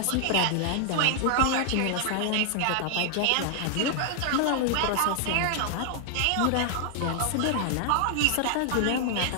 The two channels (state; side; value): different; both; correlation 0.00